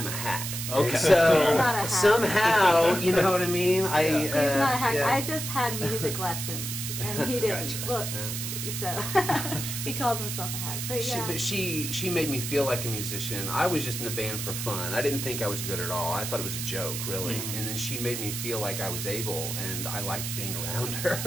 a hack. Okay. And so He's not a hack. somehow, you know what I mean? He's not a hack. yeah. I just had music lessons, and he didn't. Gotcha. Well, so he calls himself a hack. But yeah. She made me feel like a musician. I was just in a band for fun. I didn't think I was good at all. I thought it was a joke, really. And then she made me feel like I was able, and I liked being around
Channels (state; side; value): noise; right; hiss, 5 dB below the sound